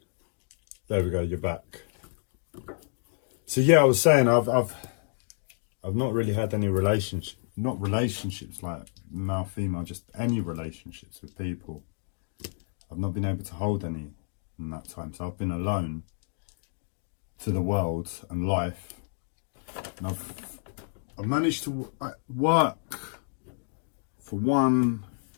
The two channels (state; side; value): silent; right; digital silence